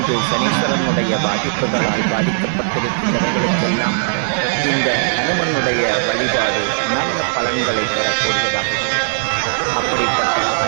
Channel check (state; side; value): silent; left; digital silence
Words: சனீஸ்வரனுடைய பாதிப்புகளால் பாதிக்கப்பட்டிருக்கின்றவர்களுக்கெல்லாம் இந்த ஹனுமனுடைய வழிபாடு நல்ல பலன்களை தரக்கூடியதாகும். அப்படிப்பட்ட